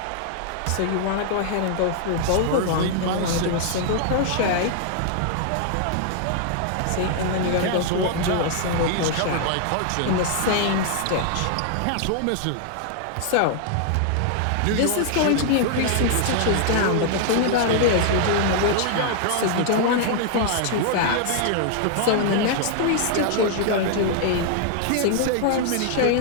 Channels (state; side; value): different; both; correlation -0.01